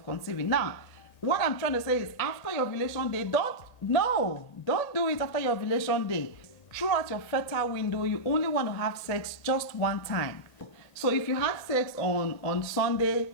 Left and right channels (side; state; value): right; late; 1.8 ms